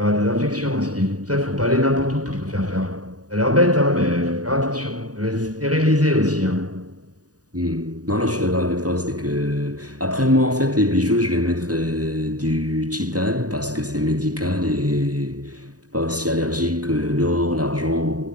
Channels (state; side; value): late; left; 0.68 ms